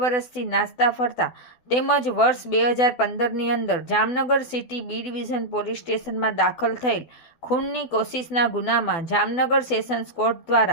નાસ્તા ફરતા તેમજ વર્ષ 2015ની અંદર Jamnagar city B division police સ્ટેશનમાં દાખલ થયેલ ખૂનની કોશિશના ગુનામાં જામનગર સેશન્સ કોર્ટ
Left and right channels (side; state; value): right; late; 12 ms